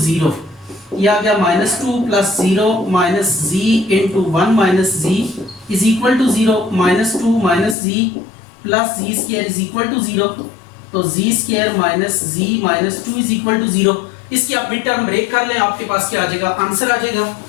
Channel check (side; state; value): right; drops out; at 7.8 s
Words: 0, यह आ गया minus 2 plus 0 minus z into 1 minus z is equal to 0, minus 2 minus z plus z square is equal to 0, तो z square minus z minus 2 is equal to 0। इसकी आप मिड टर्म ब्रेक कर लें, आपके पास क्या आ जाएगा, आंसर आ जाएगा।